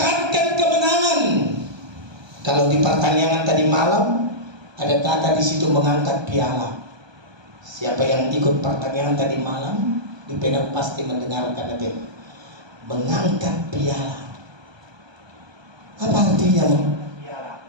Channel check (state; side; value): late; left; 1.2 ms